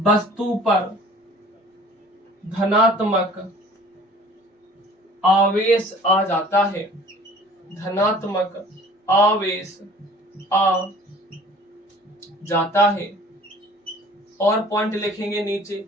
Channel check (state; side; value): normal; both; correlation 0.49